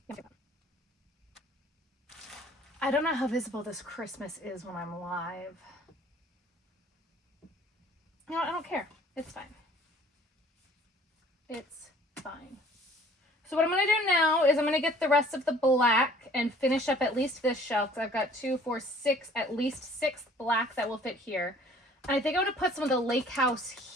No. I don't know how visible this Christmas is when I'm live. You know what? I don't care. It's fine. It's fine. So what I'm going to do now is I'm going to get the rest of the black and finish up at least this shelf. So I've got 2, 4, 6, at least 6 black that will fit here. And I think I'm going to put some of the Lake House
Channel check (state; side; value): normal; both; correlation 0.53